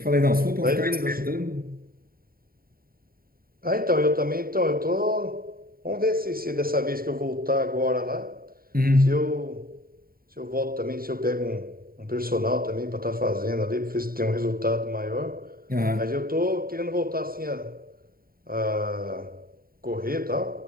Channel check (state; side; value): late; left; 0.43 ms